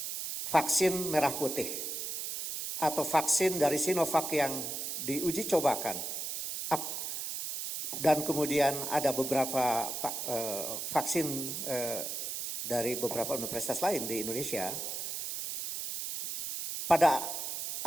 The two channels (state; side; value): noise; right; hiss, 4 dB below the sound